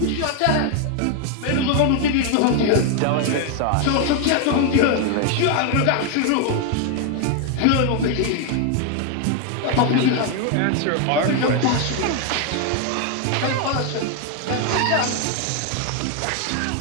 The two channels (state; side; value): different; both; correlation 0.01